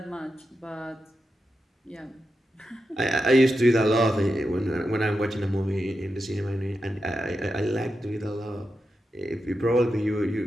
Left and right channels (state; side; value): normal; both; correlation 0.89